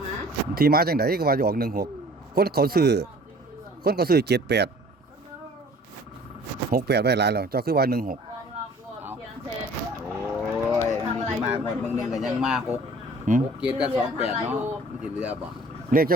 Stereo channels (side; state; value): both; normal; correlation 0.50